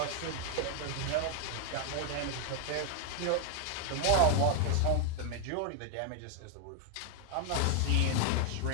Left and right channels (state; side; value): different; both; correlation 0.00